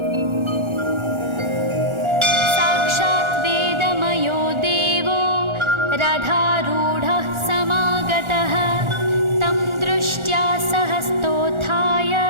रथारूढः समागतः तं दृष्ट्या सहस्तोत्थाय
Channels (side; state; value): left; late; 1.4 ms